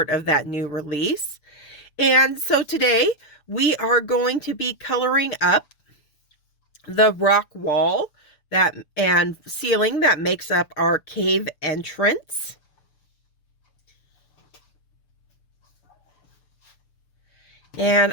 of that new release. And so today we are going to be coloring up the rock wall and ceiling that makes up our cave entrance. And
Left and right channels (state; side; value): late; right; 6.8 ms